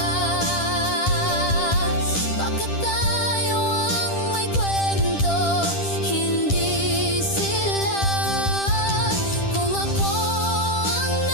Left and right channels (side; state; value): right; late; 10 ms